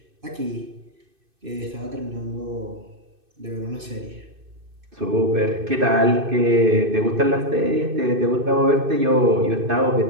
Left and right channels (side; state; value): left; late; 2.6 ms